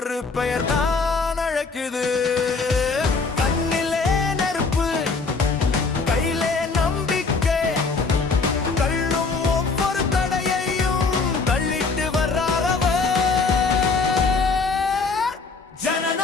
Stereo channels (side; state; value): right; quieter; 4.3 dB